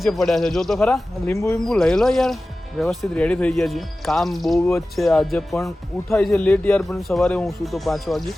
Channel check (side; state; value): both; normal; correlation 0.96